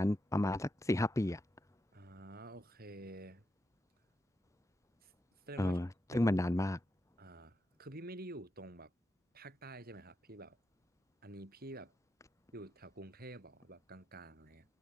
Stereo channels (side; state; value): both; normal; correlation 0.86